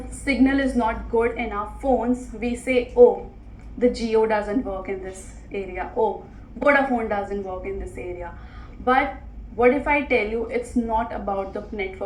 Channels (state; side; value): identical; both; correlation 1.00